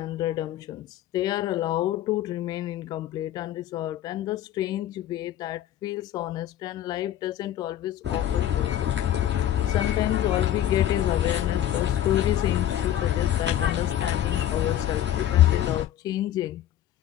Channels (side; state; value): right; quieter; 11.8 dB